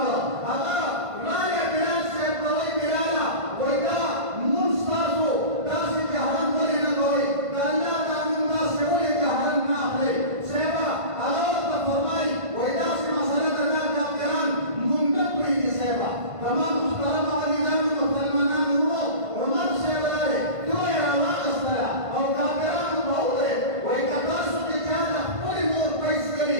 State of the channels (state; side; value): late; left; 1.5 ms